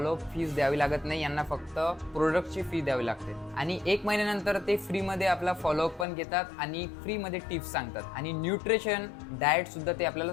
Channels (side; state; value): right; drops out; at 6.1 s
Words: फीस द्यावी लागत नाही. यांना फक्त प्रोडक्टची फी द्यावी लागते आणि 1 महिन्यानंतर ते फ्रीमध्ये आपला फॉलोअप पण घेतात आणि फ्रीमध्ये टिप्स सांगतात आणि न्यूट्रिशन डाएट सुद्धा ते आपल्याला